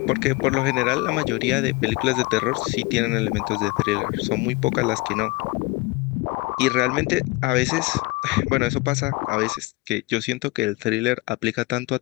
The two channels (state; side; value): quieter; right; 22.3 dB